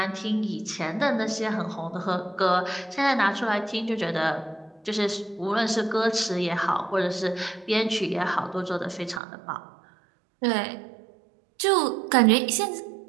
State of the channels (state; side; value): drops out; left; at 9.2 s